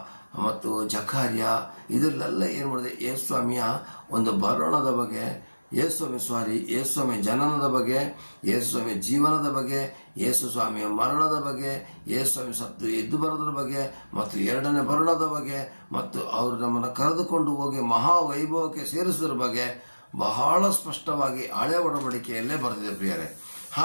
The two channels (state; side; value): inverted; both; correlation -1.00